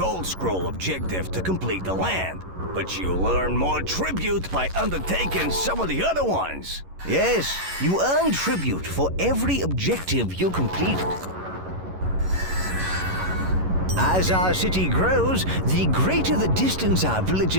Scroll objective to complete the land, but you earn more tribute by undertaking some of the other ones. Yes, you earn tribute for every objective you complete. As our city grows, the greater the distance our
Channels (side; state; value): left; late; 11 ms